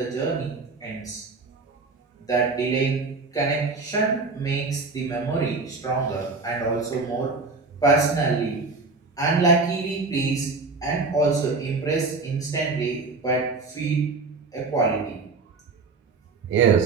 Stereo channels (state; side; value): quieter; left; 4.0 dB